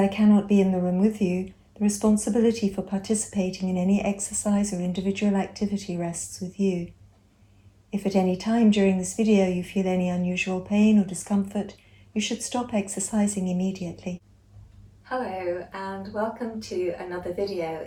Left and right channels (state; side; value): identical; both; correlation 1.00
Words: cannot be in the room with you, the responsibility for participating in any exercise or individual activity rests with you. If at any time during this video you feel any unusual pain or discomfort, you should stop exercising immediately. Hello and welcome to another video